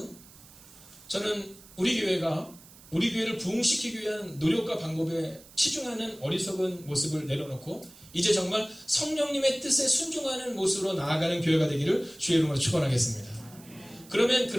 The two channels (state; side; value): noise; right; hiss, 22 dB below the sound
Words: 저는 우리 교회를 부흥시키기 위한 노력과 방법에 치중하는 어리석은 모습을 내려놓고 이제 정말 성령님의 뜻에 순종하는 모습으로 나아가는 교회가 되기를 주의 이름으로 축원하겠습니다. 그러면